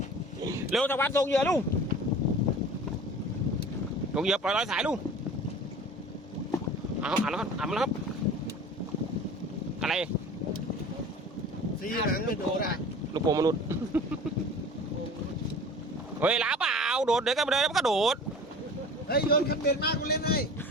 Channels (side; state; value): both; normal; correlation 0.41